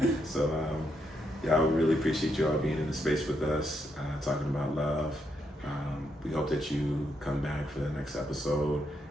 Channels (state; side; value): normal; both; correlation 0.79